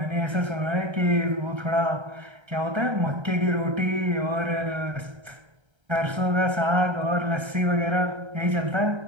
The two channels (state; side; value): late; left; 1.3 ms